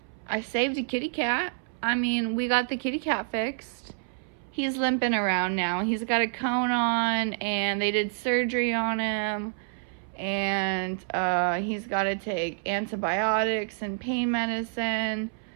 I saved a kitty cat. I mean, we got the kitty cat fixed. He's limping around now. He's got a cone on, and they did surgery on him, and he's got to take antibiotics and pain medicine,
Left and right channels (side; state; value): left; silent; 59 dB below the other